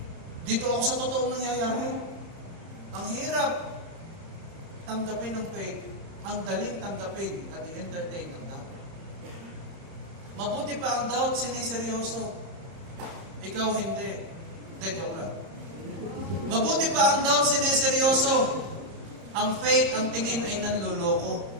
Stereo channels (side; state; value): left; late; 30 ms